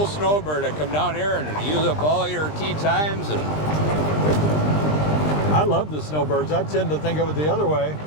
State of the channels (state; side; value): late; right; 20 ms